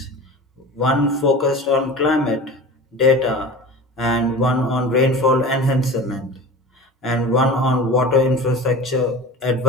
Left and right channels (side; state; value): both; normal; correlation 0.35